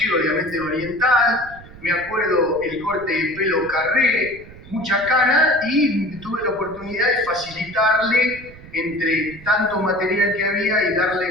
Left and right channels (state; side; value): noise; right; rumble, 19 dB below the sound